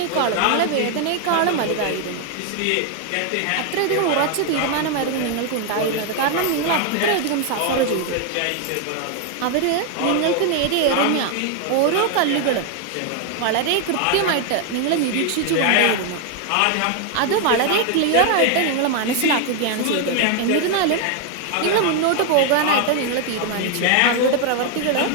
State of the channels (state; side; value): different; both; correlation 0.01